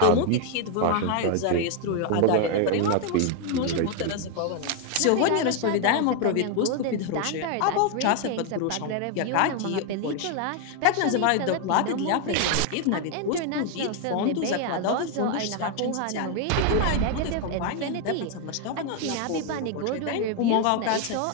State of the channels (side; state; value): both; different; correlation 0.01